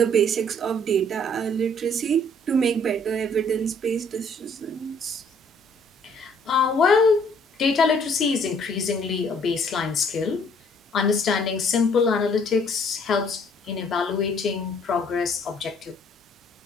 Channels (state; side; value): normal; both; correlation 0.61